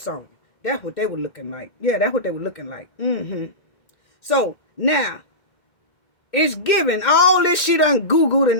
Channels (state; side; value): late; right; 2.1 ms